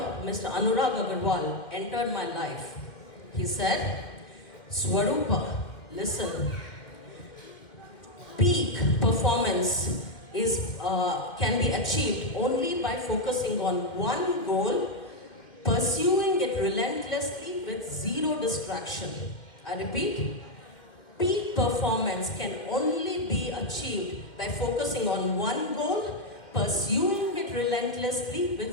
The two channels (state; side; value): late; right; 1.9 ms